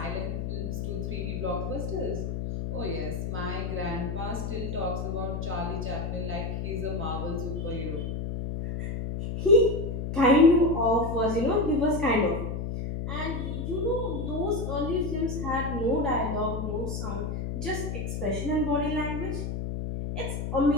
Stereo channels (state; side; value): noise; left; hum, 3 dB below the sound